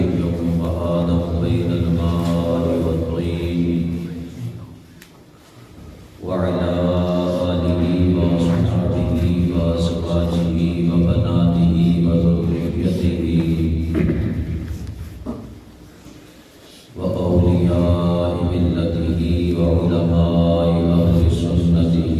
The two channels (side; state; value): both; identical; correlation 1.00